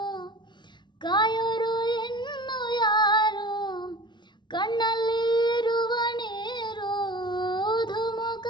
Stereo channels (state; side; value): late; right; 0.22 ms